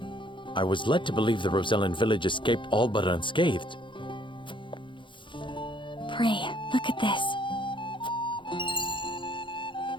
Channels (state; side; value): late; right; 0.24 ms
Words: I was led to believe the Rosellan village escaped all but unscathed. Pray, look at this.